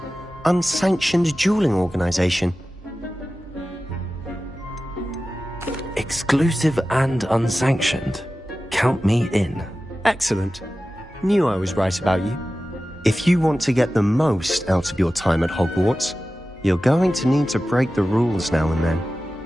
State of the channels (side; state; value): both; normal; correlation 0.94